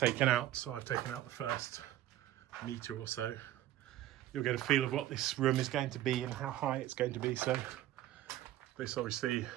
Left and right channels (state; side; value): quieter; left; 13.7 dB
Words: out, so I've taken out the first metre or so, you'll get a feel of what this room is going to be and how high it's going to be. So this obviously